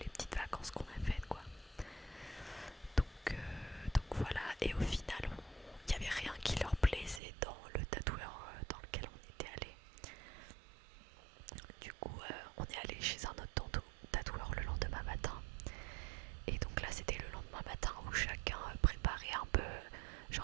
petites vacances qu'on a faites quoi. Donc voilà, et au final il n'y avait rien qui leur plaisait dans le tatoueur dans lequel on était allé. Du coup on est allé chez un autre tatoueur le lendemain matin. Et donc là c'était le lendemain matin où chacun préparait un peu,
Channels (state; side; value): drops out; left; at 7.2 s